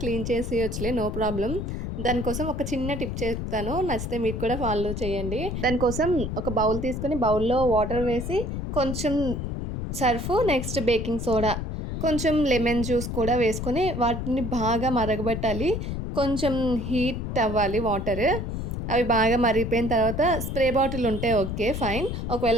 చేసేయొచ్చులే నో ప్రాబ్లమ్. దానికోసం ఒక చిన్న టిప్ చెప్తాను. నచ్చితే మీరు కూడా ఫాలో చేయండి. దానికోసం ఒక బౌల్ తీసుకొని బౌల్‌లో వాటర్ వేసి, కొంచెం సర్ఫు, నెక్స్ట్ బేకింగ్ సోడా, కొంచెం లెమన్ జ్యూస్ కూడా వేసుకొని వాటిని బాగా మరగబెట్టాలి. కొంచెం హీట్ అవ్వాలి వాటర్. అవి బాగా మరిగిపోయిన తర్వాత స్ప్రే బాటిల్ ఉంటే ఓకే. ఫైన్. ఒకవేళ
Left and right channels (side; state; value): left; noise; rumble, 4 dB below the sound